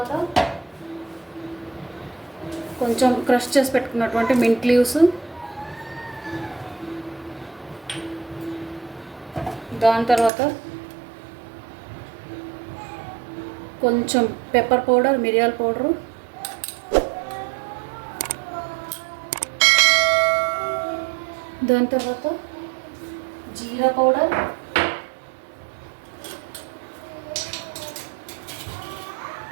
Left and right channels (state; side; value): drops out; left; at 10.3 s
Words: కొంచెం క్రష్ చేసి పెట్టుకున్నటువంటి మింట్ లీవ్స్, దాని తర్వాత కొంచెం పెప్పర్ పౌడర్, మిరియాల పౌడరు, దాని తర్వాత జీరా పౌడర్,